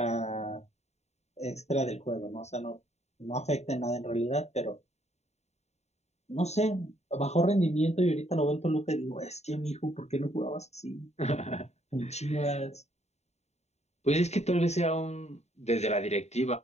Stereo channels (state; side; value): late; right; 0.32 ms